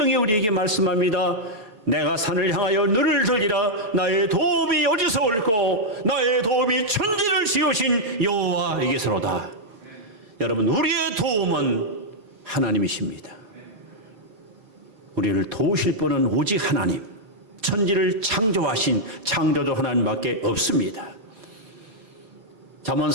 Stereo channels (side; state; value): left; late; 4.5 ms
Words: 우리에게 말씀합니다. 내가 산을 향하여 눈을 들리라. 나의 도움이 어디서 올고 나의 도움이 천지를 지으신 여호와에게서로다. 여러분, 우리의 도움은 하나님이십니다. 우리를 도우실 분은 오직 하나님, 천지를 창조하신 창조주 하나님밖에 없습니다. 잠언